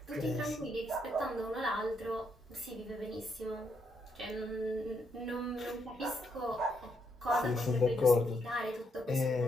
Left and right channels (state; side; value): normal; both; correlation 0.77